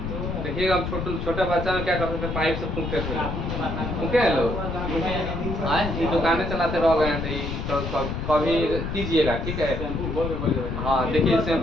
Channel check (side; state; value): left; noise; rumble, 4 dB below the sound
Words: देखिएगा हम छोटा बच्चा में क्या करते थे, पाइप से फूंकते थे, फूंके हैं लोग, आज ये दुकानें चलाते रह गए, तो कभी कीजिएगा, ठीक है? हाँ, देखिए